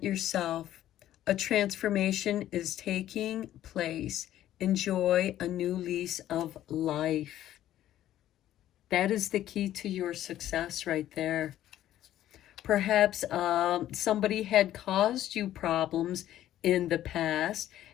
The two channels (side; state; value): right; quieter; 12.7 dB